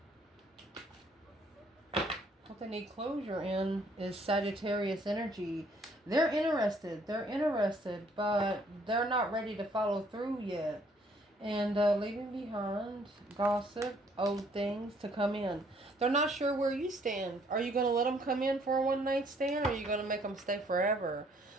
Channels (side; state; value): both; normal; correlation 0.64